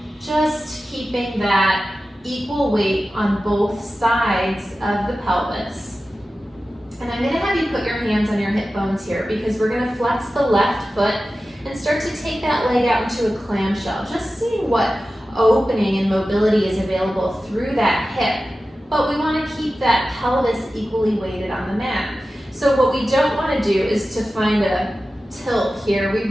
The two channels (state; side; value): normal; both; correlation 0.94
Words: just keeping that equal weight on both sides of the pelvis. And I'm gonna have you put your hands on your hip bones here because we're gonna flex the left foot and start to take that leg out into a clamshell. Just seeing what opening and mobility is available through that hip. But we wanna keep that pelvis equally weighted on the mat. So what we don't wanna do is to find a tilt here. We